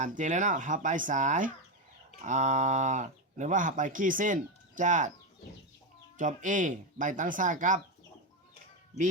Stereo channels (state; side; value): normal; both; correlation 0.10